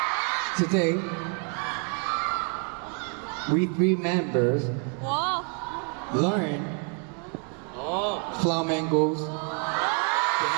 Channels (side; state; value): left; quieter; 38.5 dB